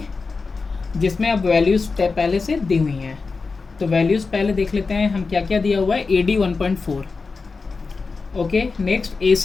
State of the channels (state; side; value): quieter; right; 4.4 dB